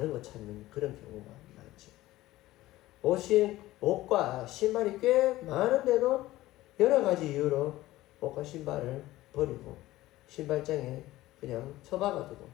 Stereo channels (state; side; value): quieter; right; 16.6 dB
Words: 거 찾는 그런 경우가 많죠. 옷과 신발이 꽤 많은데도 여러 가지 이유로 옷과 신발을 버리고 신발장에 그냥 처박아두고